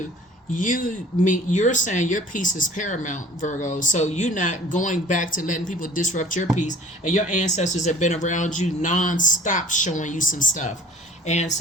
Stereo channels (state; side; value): normal; both; correlation 0.49